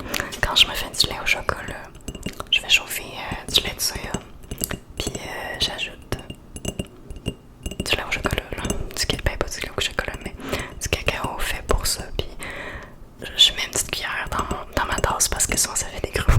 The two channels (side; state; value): both; identical; correlation 1.00